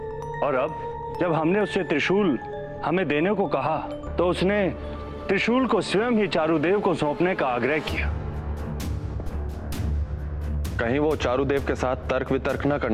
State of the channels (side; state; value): both; identical; correlation 1.00